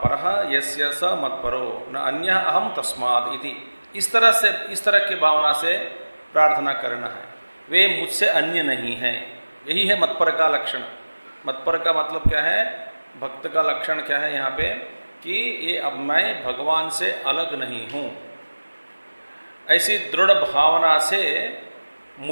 परः यस्य स मत्परो न अन्यः अहम तस्मात् इति। इस तरह की भावना से प्रार्थना करना है। वे मुझसे अन्य नहीं हैं, यही है मतपर का लक्षण। मतपर का मतलब क्या है, भक्त का लक्षण क्या है यहाँ पे, कि ये अब मैं भगवान से अलग नहीं हूँ। ऐसी दृढ़ भावना से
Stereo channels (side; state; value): both; inverted; correlation -1.00